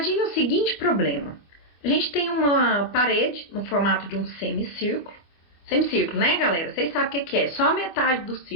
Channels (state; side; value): late; right; 24 ms